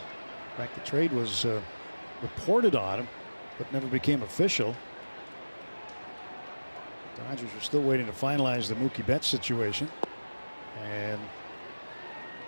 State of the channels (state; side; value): inverted; both; correlation -1.00